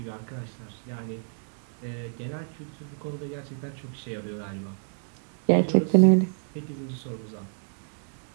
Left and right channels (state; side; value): silent; left; digital silence